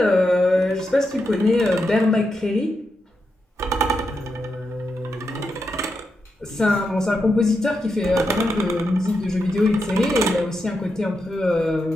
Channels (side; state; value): both; normal; correlation 0.86